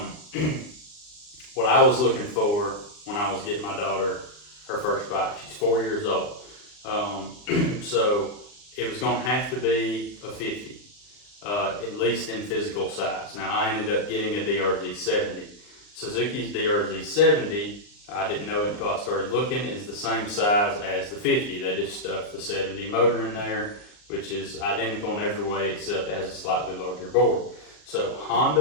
what I was looking for when I was getting my daughter her first bike, she's 4 years old. So it was going to have to be a 50, at least in physical size. Now I ended up getting a DRZ 70. Suzuki's DRZ 70, I didn't know it until I started looking, is the same size as the 50. They just stuffed the 70 motor in there, which is identical in every way except it has a slightly larger board. So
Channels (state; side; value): late; right; 39 ms